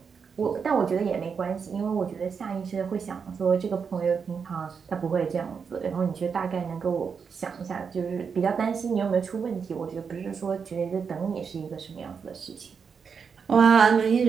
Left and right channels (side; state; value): left; quieter; 6.1 dB